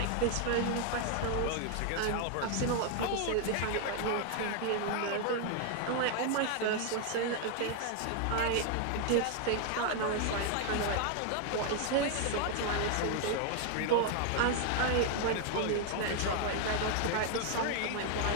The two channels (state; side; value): different; both; correlation 0.00